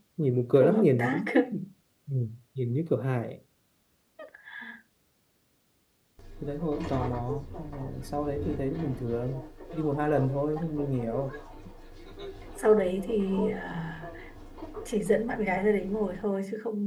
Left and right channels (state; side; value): identical; both; correlation 1.00